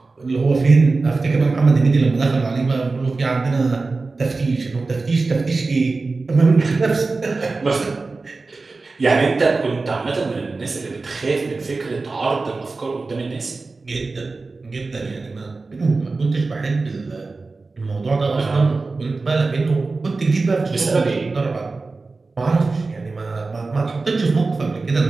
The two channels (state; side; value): quieter; left; 3.8 dB